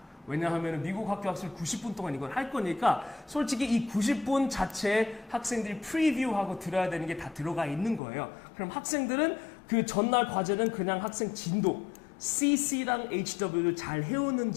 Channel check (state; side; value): drops out; right; at 8.0 s